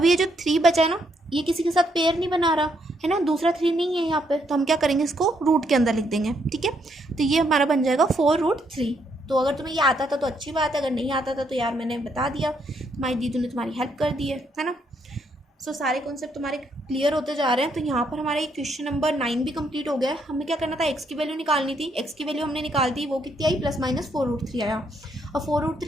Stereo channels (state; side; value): normal; both; correlation 0.74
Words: ये जो 3 बचा है ना, ये किसी के साथ पेयर नहीं बना रहा है ना, दूसरा 3 नहीं है यहाँ पे, तो हम क्या करेंगे, इसको रूट के अंदर लिख देंगे, ठीक है। तो ये हमारा बन जाएगा 4√3। तो अगर तुम्हें ये आता था तो अच्छी बात है, अगर नहीं आता था तो यार मैंने बता दिया, तुम्हारी दीदी ने तुम्हारी हेल्प कर दी है ना। सो सारे कॉन्सेप्ट तुम्हारे क्लियर होते जा रहे हैं। तो यहाँ पर हमारा ये क्वेश्चन नंबर 9 भी कंप्लीट हो गया है। हमें क्या करना था, एक्स की वैल्यू निकालनी थी, एक्स की वैल्यू हमने निकाल दी, वो कितनी आई, प्लस माइनस 4√3 आया। और